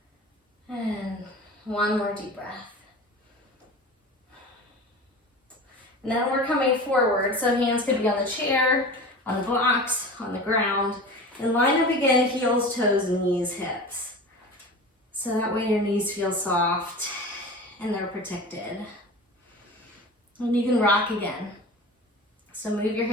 And one more deep breath. And then we're coming forward, so hands could be on the chair, on the blocks, on the ground. And line up again, heels, toes, knees, hips. So that way your knees feel soft and they're protected. And you can rock again. So move your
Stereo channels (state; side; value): normal; both; correlation 0.34